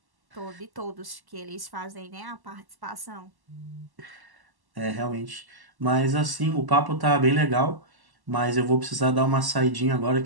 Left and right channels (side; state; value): left; late; 1.1 ms